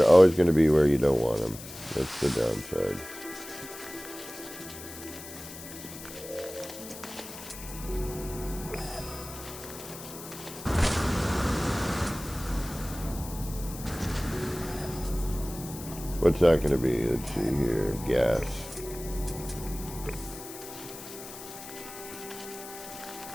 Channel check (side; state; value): left; noise; hiss, 13 dB below the sound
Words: always going to be where you don't want them. That's the downside. What's that going to be? Let's see here. Gas.